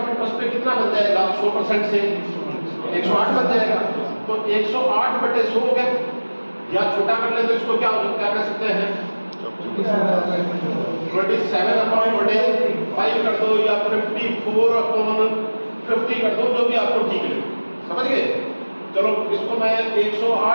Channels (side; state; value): both; inverted; correlation -1.00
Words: इंटरेस्ट पे कितना बन जाएगा? 100% से 108 बन जाएगा। तो 108 बटे 100 हो गया, या छोटा कर ले तो इसको क्या कर सकते हैं? 27 अपॉन बटे 5 कर दो, या 54 अपॉन 50 कर दो, जो भी आपको ठीक लगे। समझ गए? चलो इसको मैं